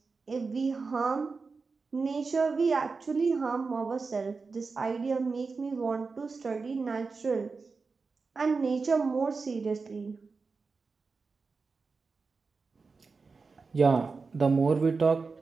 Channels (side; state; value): left; quieter; 4.5 dB